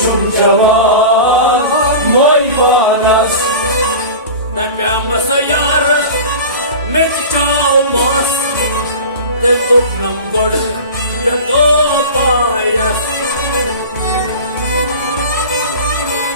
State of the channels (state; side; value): inverted; both; correlation -0.33